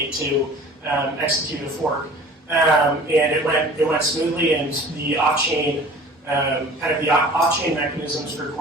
to execute a fork. And it went smoothly, and the off-chain off-chain mechanisms for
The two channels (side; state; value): both; normal; correlation 0.44